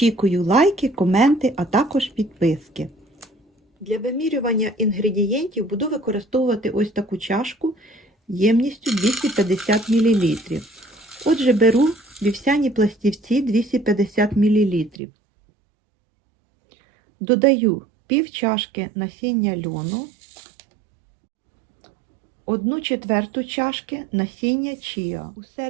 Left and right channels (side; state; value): left; drops out; at 15.0 s